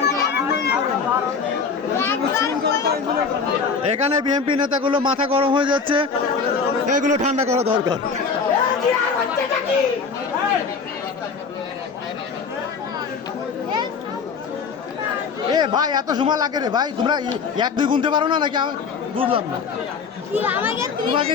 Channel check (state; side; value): quieter; right; 5.4 dB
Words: এখানে বিএনপি নেতাগুলো মাথা গরম হয়ে যাচ্ছে, এগুলো ঠান্ডা করা দরকার। এ ভাই, এত সময় লাগে রে ভাই, তোমরা 1-2 গুনতে পারো না নাকি? আমি বুঝলাম না। তোমাকে